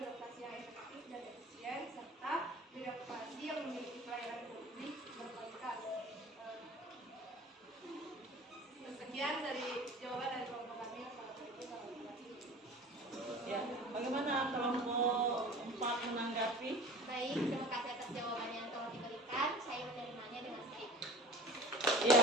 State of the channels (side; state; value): both; normal; correlation 0.42